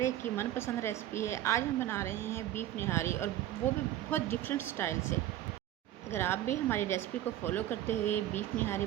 एक की मनपसंद रेसिपी है। आज हम बना रहे हैं बीफ निहारी, और वो भी बहुत डिफरेंट स्टाइल से। अगर आप भी हमारी रेसिपी को फॉलो करते हुए बीफ निहारी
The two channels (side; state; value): left; quieter; 13.1 dB